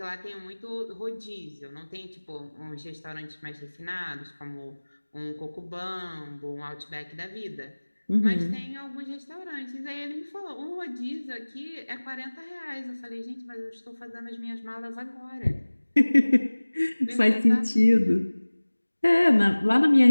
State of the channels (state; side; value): inverted; both; correlation -1.00